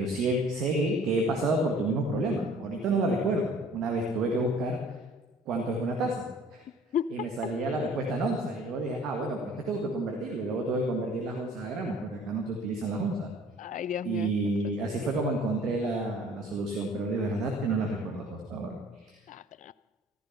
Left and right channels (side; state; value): both; normal; correlation 0.52